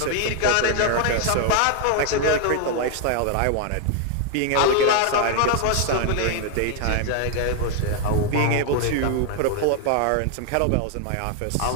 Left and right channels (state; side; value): different; both; correlation 0.00